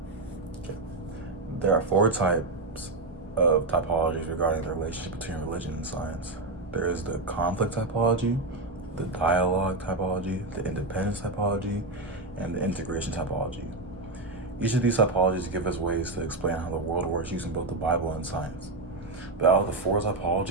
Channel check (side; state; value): left; quieter; 3.1 dB